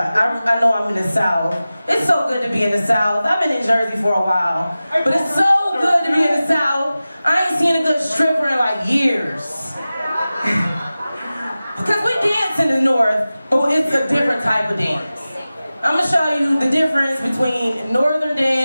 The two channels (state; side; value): inverted; both; correlation -0.96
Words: I know I'm in the South. It's so good to be in the South. I've been in Jersey for a while, but it's so good to be in the South. I ain't seen a good stripper in like years. Because we dance in the North, but it's a different type of dance. I'm gonna show you the difference between Northern